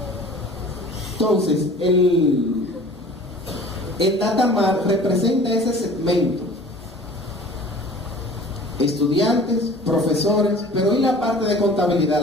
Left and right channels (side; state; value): both; normal; correlation 0.45